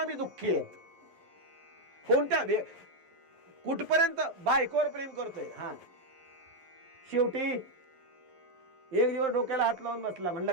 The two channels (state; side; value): late; left; 11 ms